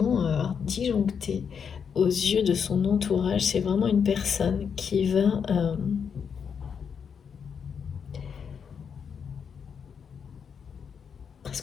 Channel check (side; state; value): right; quieter; 6.8 dB